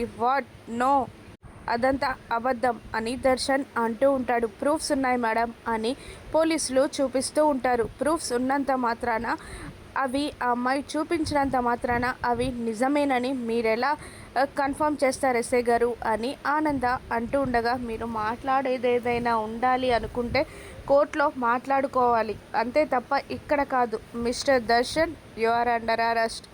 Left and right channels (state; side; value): identical; both; correlation 1.00